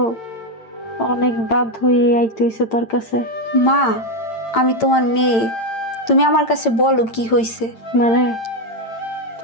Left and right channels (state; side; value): late; right; 8.9 ms